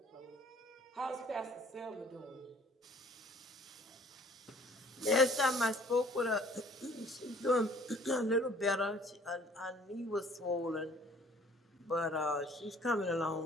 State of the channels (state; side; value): normal; both; correlation 0.55